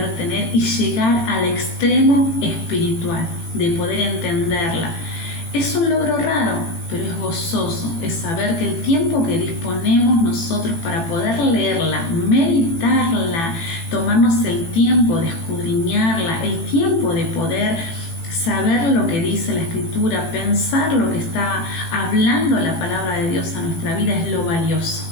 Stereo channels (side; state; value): right; late; 18 ms